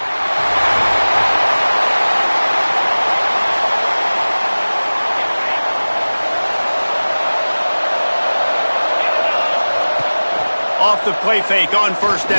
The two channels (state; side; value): inverted; both; correlation -1.00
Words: Off the play fake on first